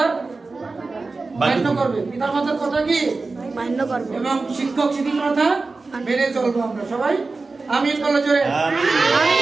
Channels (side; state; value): left; quieter; 3.8 dB